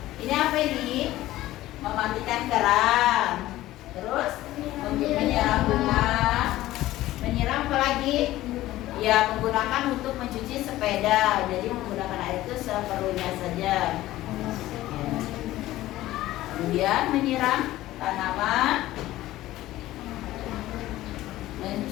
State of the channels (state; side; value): quieter; right; 15.7 dB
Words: Ini apa ini? Mematikan keran. Terus menyiram bunga. Menyiram apa lagi? Ya, menggunakan untuk mencuci sepeda. Jadi menggunakan air itu seperlunya saja. Ya. Kemudian menyiram tanaman,